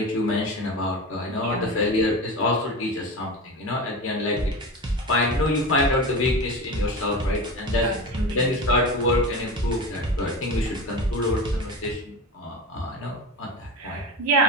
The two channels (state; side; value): normal; both; correlation 0.27